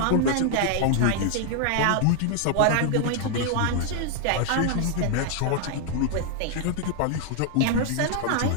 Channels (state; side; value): different; both; correlation 0.00